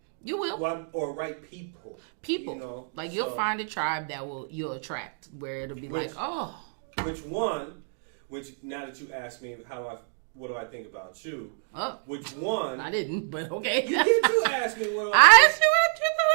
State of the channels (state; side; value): silent; left; digital silence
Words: You will. Or right people. People. You'll find a tribe that you'll attract, where it'll be Which now that you asked me what do I think about you? Oh, Which one? I didn't, but okay. You did. You asked me what do I asked you what you thought